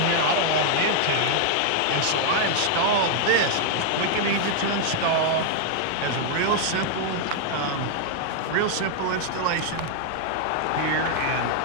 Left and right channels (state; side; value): different; both; correlation 0.00